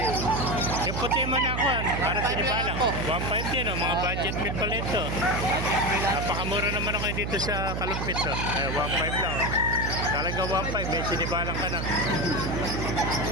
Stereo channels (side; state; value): right; noise; hum, 2 dB below the sound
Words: Yung puti mo na ako, para sinibalang. 1.5 din, mga budget meal pala ito. Napakamura naman ako dito sa Alumpit. Ayan, 1.5 lang. Talaga 1.5, may sinibalang ka na.